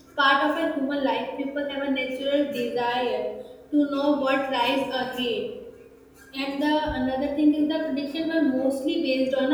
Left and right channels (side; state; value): both; identical; correlation 1.00